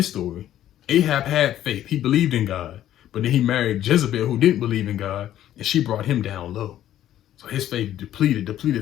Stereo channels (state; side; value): quieter; right; 12.1 dB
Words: story. Ahab had faith. He believed in God. But then he married Jezebel, who didn't believe in God, and she brought him down low. So his faith depleted